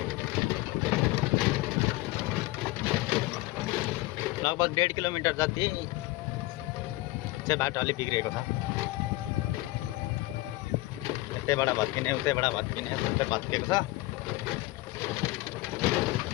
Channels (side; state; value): right; quieter; 19.2 dB